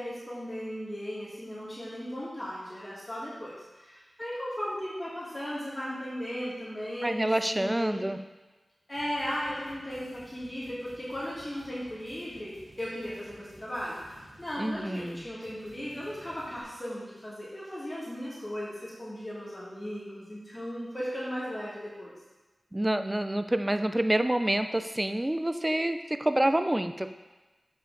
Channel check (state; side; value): normal; both; correlation 0.98